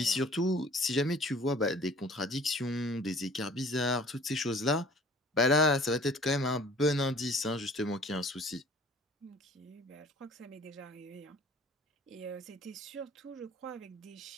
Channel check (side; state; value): both; normal; correlation 0.49